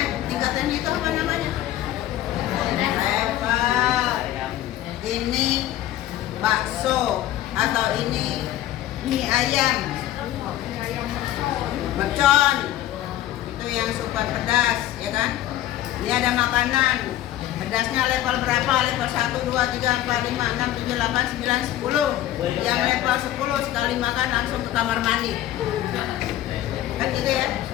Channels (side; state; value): right; quieter; 13.4 dB